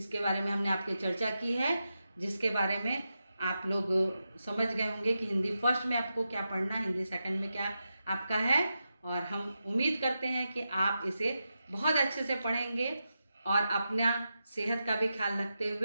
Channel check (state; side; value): inverted; both; correlation -0.89